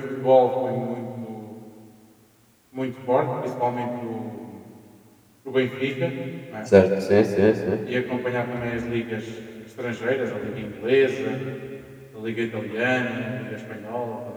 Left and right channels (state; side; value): identical; both; correlation 1.00